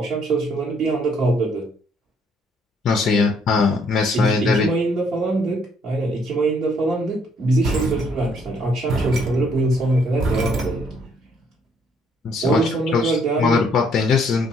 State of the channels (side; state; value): both; normal; correlation 0.67